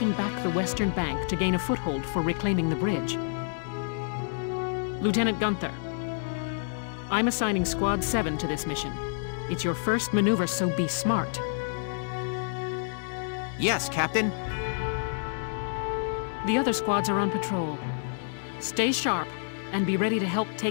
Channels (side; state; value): right; silent; 59 dB below the other